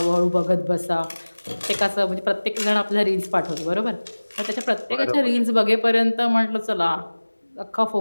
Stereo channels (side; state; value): both; inverted; correlation -1.00